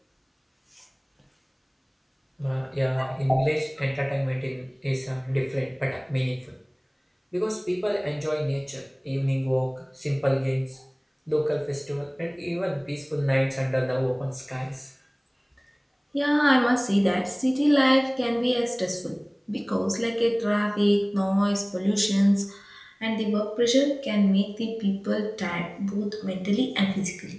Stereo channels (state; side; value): identical; both; correlation 1.00